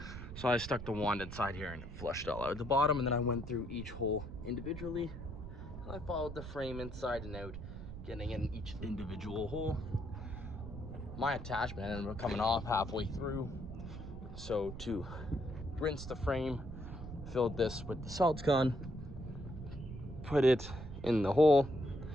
So I stuck the wand inside here and it flushed all out the bottom, and then I went through each hole individually, and I followed the frame inside and out, getting in each individual hole. My attachment ended up coming off halfway through, so to rinse the frame, filled this with the saltsgone, put it in the hole,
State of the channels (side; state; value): right; noise; rumble, 10 dB below the sound